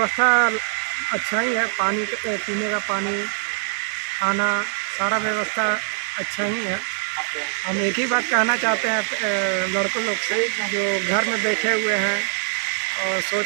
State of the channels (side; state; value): left; silent; digital silence